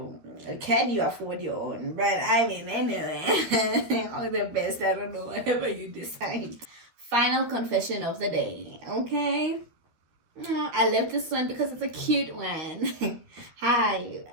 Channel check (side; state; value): left; late; 13 ms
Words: can you afford your own? But I mean, anyway, all the best. I don't know, whatever you decide. Final confession of the day. Okay. I love this one because it's a cute one.